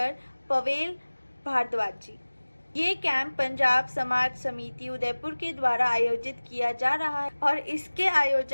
पवेल भारद्वाज जी। ये कैंप पंजाब समाज समिति उदयपुर के द्वारा आयोजित किया जा रहा है और इसके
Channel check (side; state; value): both; inverted; correlation -1.00